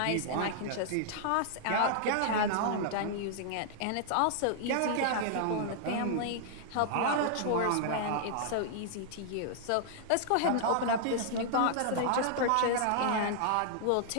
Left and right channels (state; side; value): different; both; correlation -0.01